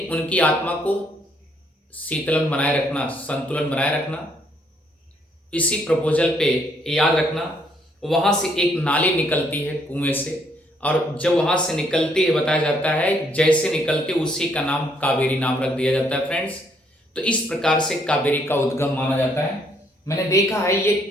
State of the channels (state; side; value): normal; both; correlation 0.69